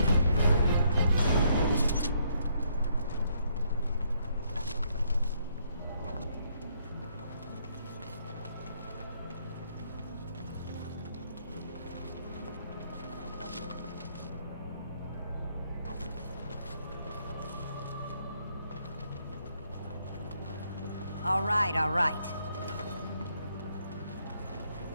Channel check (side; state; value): both; inverted; correlation -0.72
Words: All right, all right.